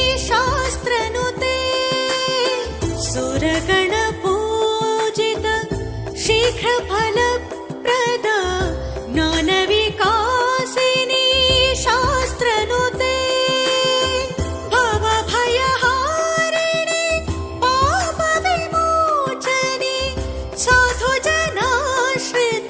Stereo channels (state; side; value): identical; both; correlation 1.00